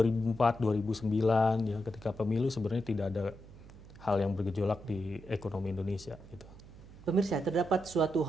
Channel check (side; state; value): right; noise; hum, 19 dB below the sound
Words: 2009 ya ketika pemilu sebenarnya tidak ada hal yang bergejolak di ekonomi Indonesia gitu. Pemirsa, terdapat suatu